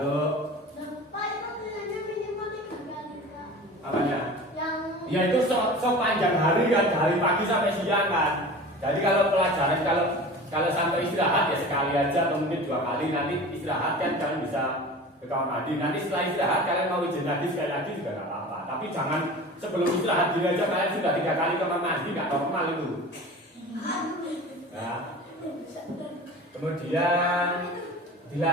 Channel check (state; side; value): normal; both; correlation 0.37